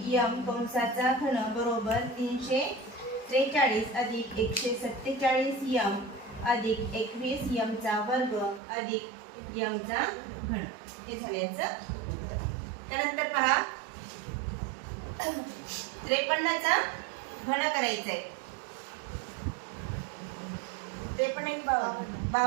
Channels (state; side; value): drops out; left; at 8.6 s